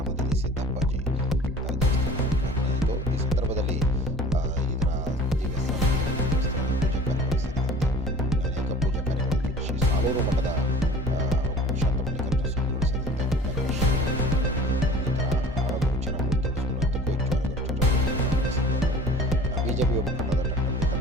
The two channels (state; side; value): normal; both; correlation 0.45